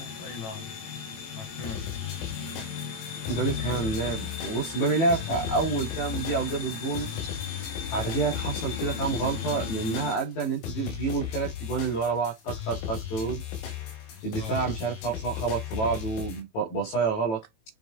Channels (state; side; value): late; right; 18 ms